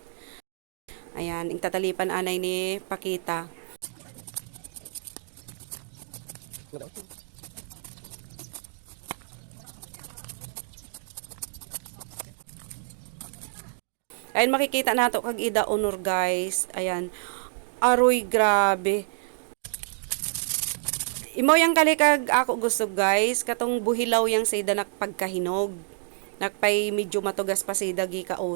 Ayan, ing tatalipan anay ni Pakita. Ayan, makikita nato kag ida honor guys. Ayan. Aroy, grabe. Imo yang kalikag ako gusto guys, katong buhilaw yang sa ida nakpagkahinog. Nakpay medyo matugas pa sa ida gi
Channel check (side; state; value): left; silent; digital silence